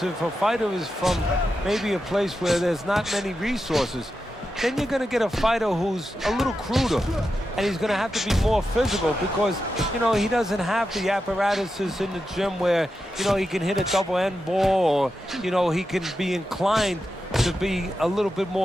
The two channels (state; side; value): normal; both; correlation 0.89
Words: if a fighter is from maybe a place where there's not many resources, then you're going to get a fighter who's a little cruder, and he's going to have to be more physical because, you know, he doesn't have the apparatuses in the gym where, you know, he can hit a double end ball, or, you know, he can be inclined to be a little bit